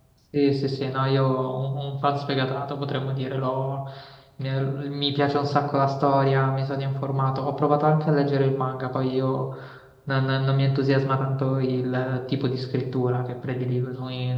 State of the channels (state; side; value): identical; both; correlation 1.00